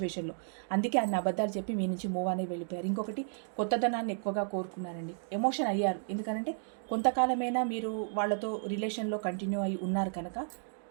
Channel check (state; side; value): silent; left; digital silence